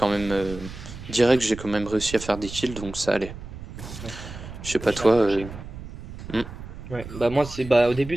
même. Direct, j'ai quand même réussi à faire des kills, donc ça allait. Ouais. Je sais Moi, pas je l'ai toi. accroché. Hmm. Ouais, bah moi c'est bah au début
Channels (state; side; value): noise; right; rumble, 12 dB below the sound